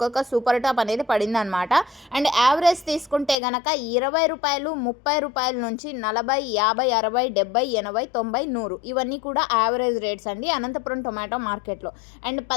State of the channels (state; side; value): drops out; right; at 3.4 s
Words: సూపర్ టాప్ అనేది పడింది అనమాట. అండ్ యావరేజ్ తీసుకుంటే గనక 20 రూపాయలు, 30 రూపాయల నుంచి 40, 50, 60, 70, 80, 90, 100 ఇవన్నీ కూడా యావరేజ్ రేట్స్ అండి అనంతపురం టొమాటో మార్కెట్లో. అండ్